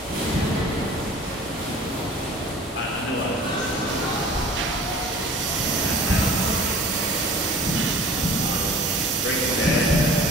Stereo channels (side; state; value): both; normal; correlation 0.45